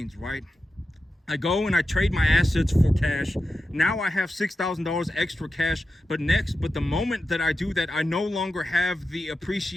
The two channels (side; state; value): both; normal; correlation 0.90